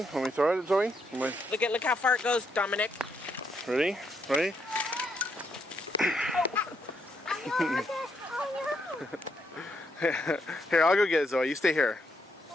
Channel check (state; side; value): normal; both; correlation 0.77